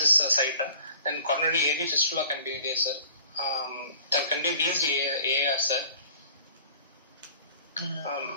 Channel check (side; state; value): both; inverted; correlation -0.48